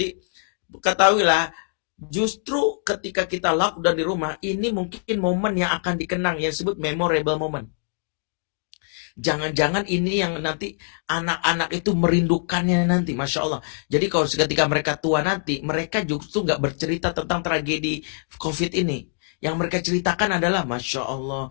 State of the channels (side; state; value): right; silent; digital silence